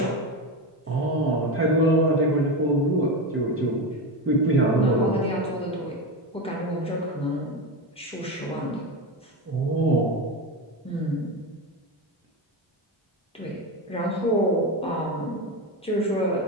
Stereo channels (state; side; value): normal; both; correlation 0.18